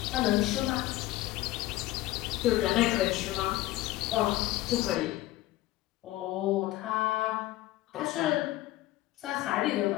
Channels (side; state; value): right; quieter; 16.6 dB